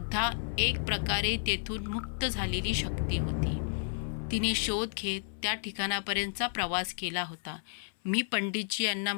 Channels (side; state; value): right; silent; 57 dB below the other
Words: एक प्रकारे तेथून मुक्त झालेली शक्ती होती. तिने शोध घेत त्या ठिकाणापर्यंतचा प्रवास केला होता. मी पंडितजी यांना